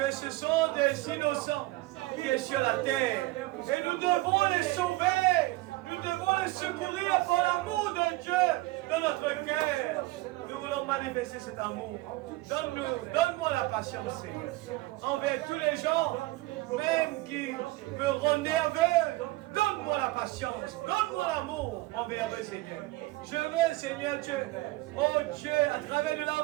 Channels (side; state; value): left; quieter; 19.7 dB